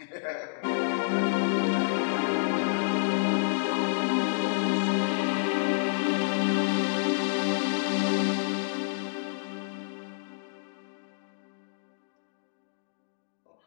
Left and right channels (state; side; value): silent; right; digital silence